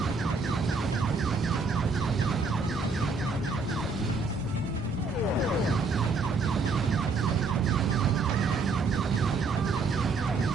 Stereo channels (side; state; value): left; quieter; 4.1 dB